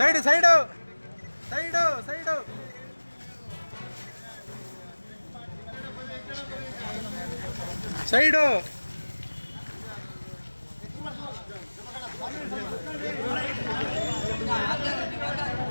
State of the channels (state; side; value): inverted; both; correlation -1.00